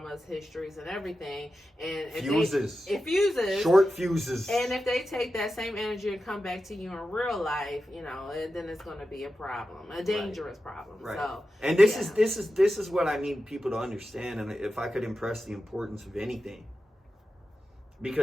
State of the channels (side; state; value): both; normal; correlation 0.92